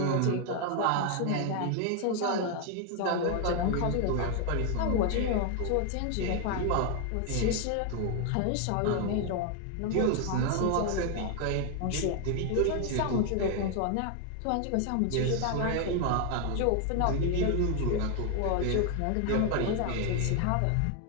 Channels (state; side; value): different; both; correlation 0.00